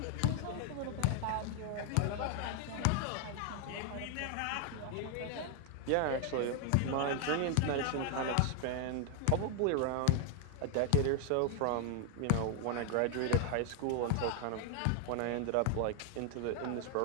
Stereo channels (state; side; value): different; both; correlation 0.00